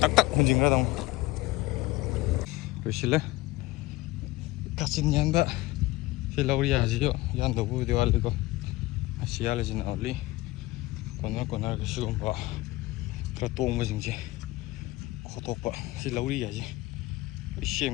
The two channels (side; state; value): right; quieter; 19.6 dB